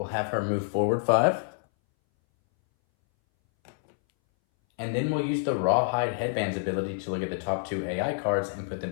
have her move forward 5. And then we'll use the Rawhide Headband's ability to look at the top 2 AI cards and put them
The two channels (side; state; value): right; silent; 60 dB below the other